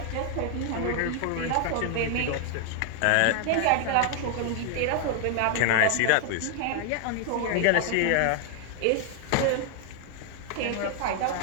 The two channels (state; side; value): different; both; correlation 0.00